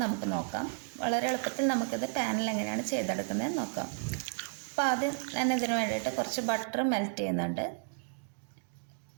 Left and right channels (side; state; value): left; silent; 56 dB below the other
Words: നമുക്ക് നോക്കാം. വളരെ എളുപ്പത്തിൽ നമുക്കിത് പാനിൽ എങ്ങനെയാണ് ചെയ്തെടുക്കുന്നത് നോക്കാം. അപ്പോൾ ആദ്യം ഞാൻ ഇതിന് വേണ്ടിയിട്ട് കുറച്ച് ബട്ടർ മെൽറ്റ് ചെയ്യുന്നുണ്ട്.